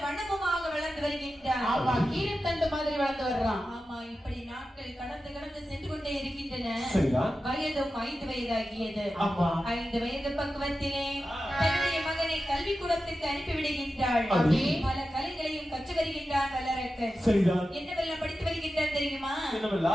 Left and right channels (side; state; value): both; normal; correlation 0.92